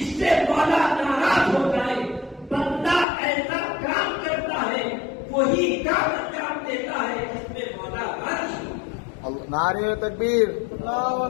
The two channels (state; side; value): drops out; right; at 3.1 s